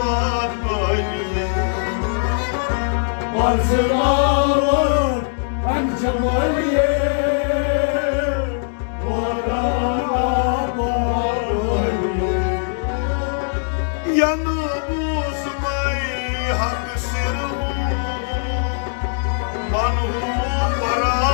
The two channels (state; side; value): silent; right; digital silence